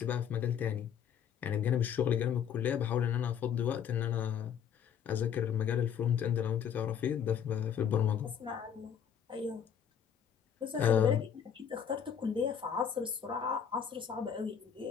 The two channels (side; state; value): right; quieter; 8.2 dB